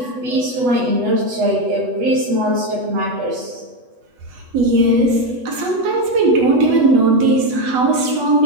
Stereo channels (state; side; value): late; left; 8.2 ms